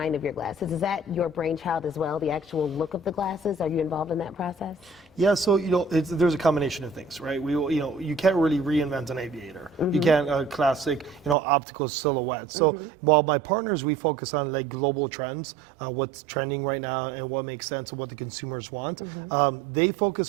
of your glasses? Is that your brainchild as well, the actual look of the glasses? Are you involved in that process? Yeah, so there's a combination of things, right? You can't really reinvent an aviator. Mm-hmm. You can't a classic optical silhouette. So while my partners, we focus on like global trends, what's trending right now and what makes sense and what the consumers want. They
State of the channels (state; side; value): drops out; left; at 11.4 s